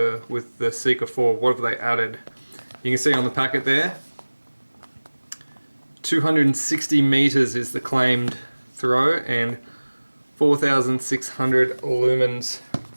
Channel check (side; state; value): both; inverted; correlation -1.00